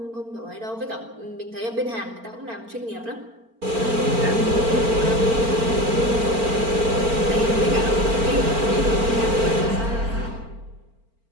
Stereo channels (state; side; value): late; left; 4.4 ms